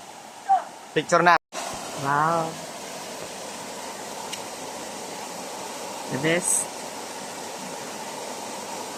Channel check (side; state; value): both; identical; correlation 1.00